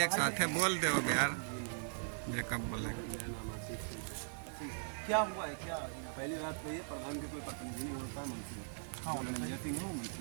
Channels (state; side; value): silent; left; digital silence